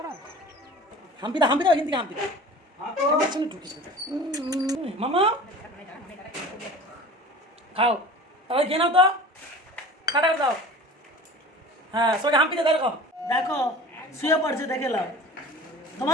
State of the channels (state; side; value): normal; both; correlation 0.40